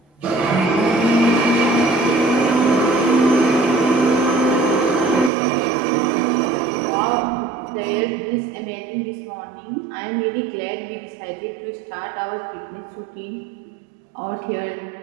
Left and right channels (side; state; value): left; drops out; at 5.3 s